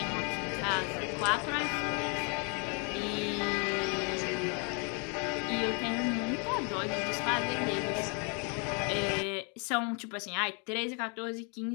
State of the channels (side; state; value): right; quieter; 36.0 dB